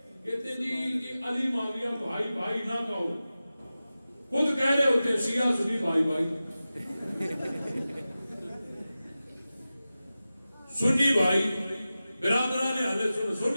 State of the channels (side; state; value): both; inverted; correlation -0.95